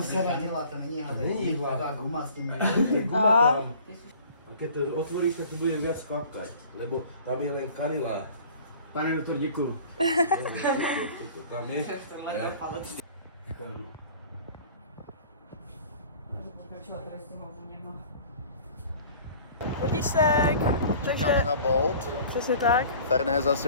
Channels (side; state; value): both; inverted; correlation -0.47